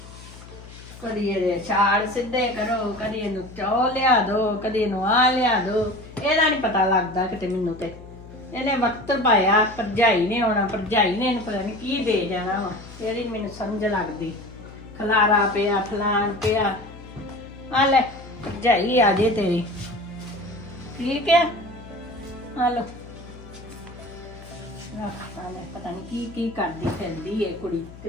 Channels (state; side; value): noise; left; hum, 17 dB below the sound